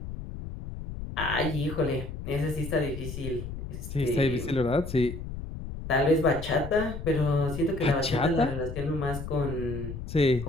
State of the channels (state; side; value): noise; left; rumble, 8 dB below the sound